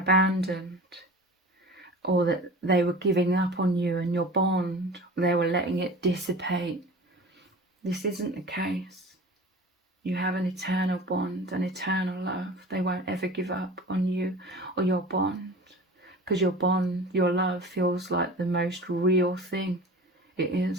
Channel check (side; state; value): both; normal; correlation 0.37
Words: or that they were giving up on you and your bond, they were letting it dissipate, this isn't the case. You have an eternal bond, an eternal love. They won't ever give up on you or your bond, because your bond, your love feels like the most real thing. It